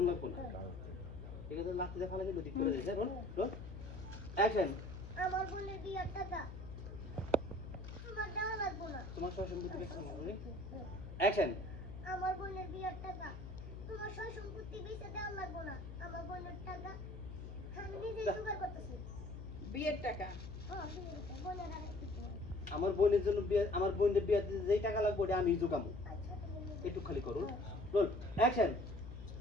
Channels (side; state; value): left; noise; hum, 10 dB below the sound